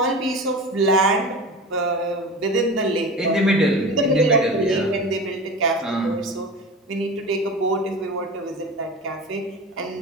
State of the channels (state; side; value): normal; both; correlation 0.31